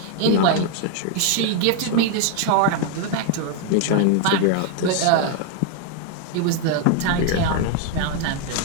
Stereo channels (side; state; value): both; different; correlation 0.00